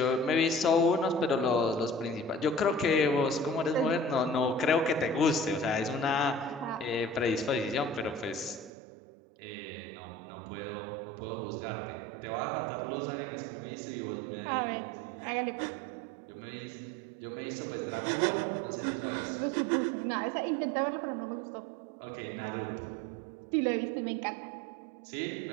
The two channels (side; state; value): left; drops out; at 8.7 s